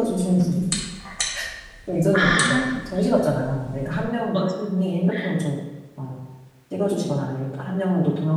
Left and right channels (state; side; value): identical; both; correlation 1.00